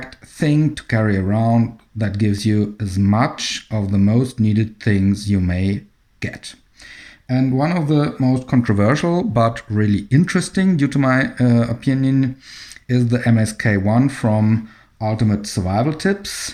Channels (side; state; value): both; identical; correlation 1.00